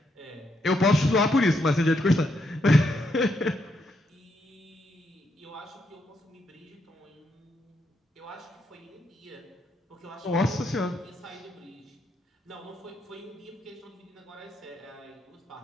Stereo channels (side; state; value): both; normal; correlation 0.78